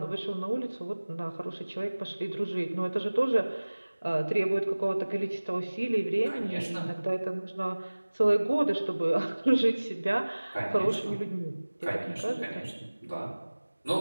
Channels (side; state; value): both; inverted; correlation -1.00